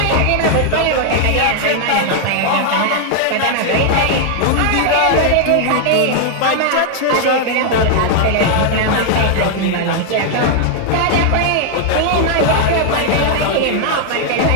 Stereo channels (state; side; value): different; both; correlation 0.00